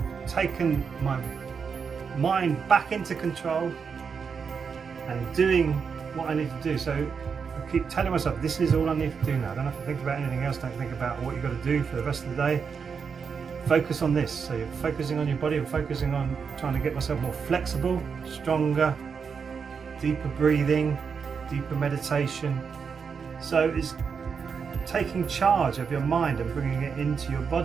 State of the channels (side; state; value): left; quieter; 6.0 dB